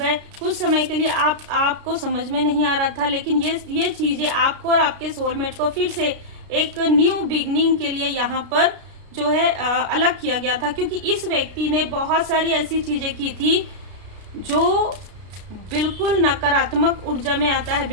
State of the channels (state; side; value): late; left; 33 ms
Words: कुछ समय के लिए आपको समझ में नहीं आ रहा था, लेकिन ये चीज़ें आपको और आपके सोलमेट को फिर से एक न्यू बिगनिंग के लिए यहाँ पर जो है अलग किया गया था। क्योंकि इस व्यक्ति ने बहुत सारी ऐसी चीज़ें की थी जो बिल्कुल नकारात्मक ऊर्जा में आता है,